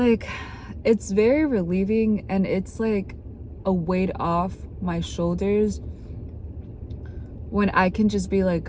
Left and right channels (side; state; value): both; identical; correlation 1.00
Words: it's very relieving, and it's like a weight off my shoulders when I can just be like,